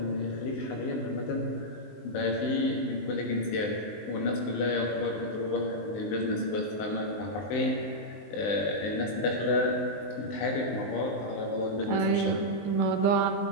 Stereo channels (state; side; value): late; right; 19 ms